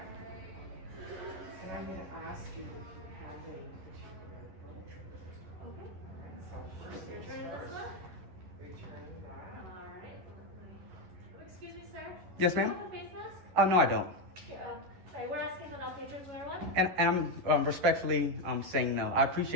And I'm gonna ask you if you have any particular book. Okay. So first things Return this first, one? return that. Alright. Oh, excuse me, sir? Yes, Do you ma'am? have a face mask? No, I don't. Sorry, we're asking that all patrons wear one. And I'm respectfully saying no. I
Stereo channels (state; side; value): late; left; 11 ms